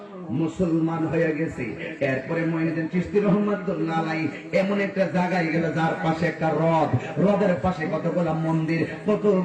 মুসলমান হয়ে গেছে। এরপরে মঈনুদ্দিন চিশতি রাহমাতুল্লাহ আলাইহি এমন একটা জায়গায় গেল যার পাশে একটা হ্রদ, হ্রদের পাশে কতগুলা মন্দির,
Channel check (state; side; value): identical; both; correlation 1.00